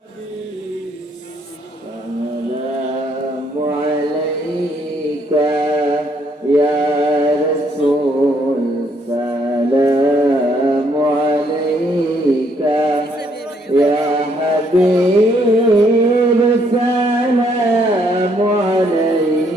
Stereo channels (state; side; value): normal; both; correlation 0.69